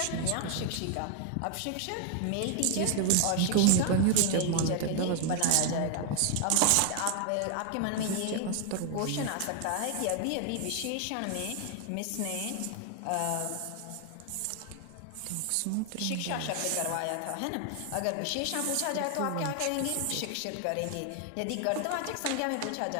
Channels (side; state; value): both; different; correlation 0.00